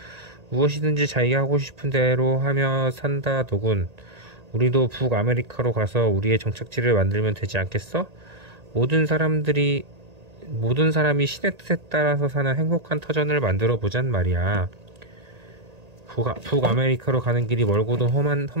무엇이든지 자기가 하고 싶은 대로 하며 산다더군. 우리도 북아메리카로 가서 우리의 정착지를 만들면 되지 않겠어? 모든 사람이 신의 뜻에 따라서 사는 행복한 터전을 만들어 보잔 말이야. 북아메리카로 가는 길이 멀고도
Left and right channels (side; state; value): left; late; 1.8 ms